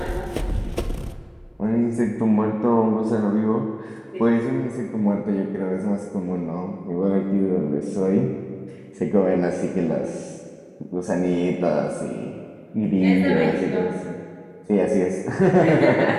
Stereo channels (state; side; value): identical; both; correlation 1.00